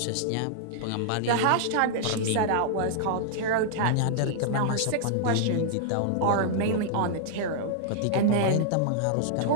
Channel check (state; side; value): different; both; correlation -0.01